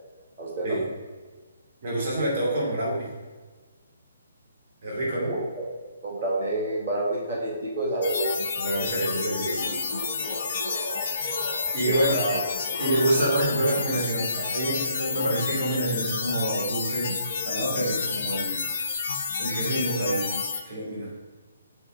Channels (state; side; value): inverted; both; correlation -0.66